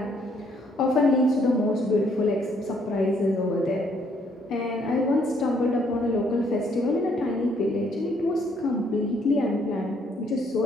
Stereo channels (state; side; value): normal; both; correlation 0.68